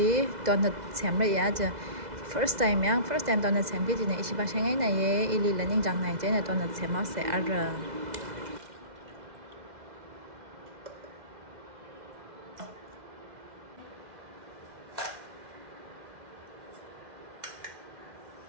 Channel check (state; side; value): late; left; 2.0 ms